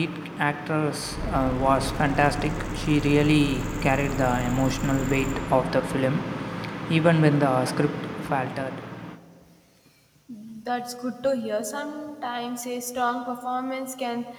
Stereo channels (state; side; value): identical; both; correlation 1.00